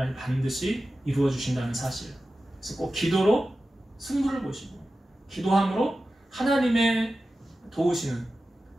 반드시 이루어 주신다는 사실. 그래서 꼭 기도로 승부를 보시고 기도함으로 하나님의 도우시는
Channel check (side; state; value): both; normal; correlation 0.94